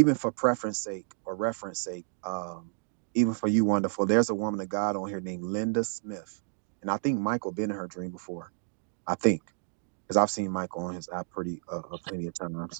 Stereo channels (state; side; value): silent; left; digital silence